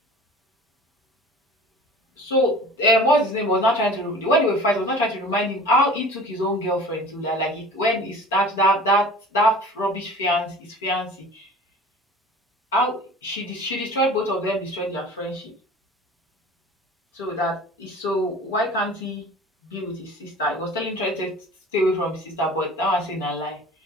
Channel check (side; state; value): both; normal; correlation 0.42